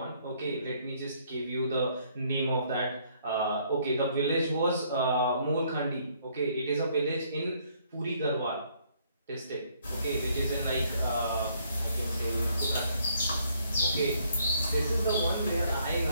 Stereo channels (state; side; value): inverted; both; correlation -0.67